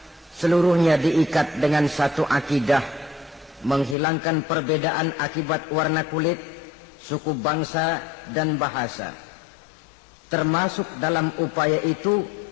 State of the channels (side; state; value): right; drops out; at 4.0 s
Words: Seluruhnya diikat dengan satu akidah, menghilangkan perbedaan akibat warna kulit, suku bangsa dan bahasa. Termasuk dalam upaya itu